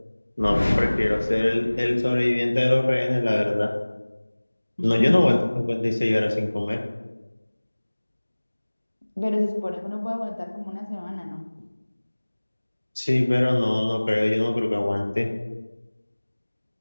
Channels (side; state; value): both; inverted; correlation -1.00